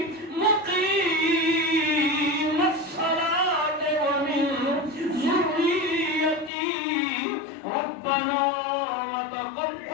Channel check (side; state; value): right; drops out; at 6.5 s